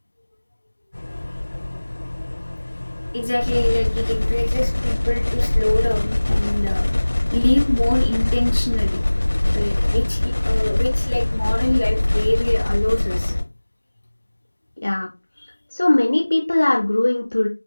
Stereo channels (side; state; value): both; inverted; correlation -1.00